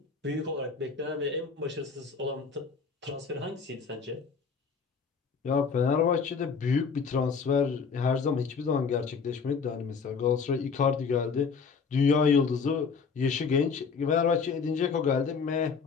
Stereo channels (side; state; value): right; quieter; 5.5 dB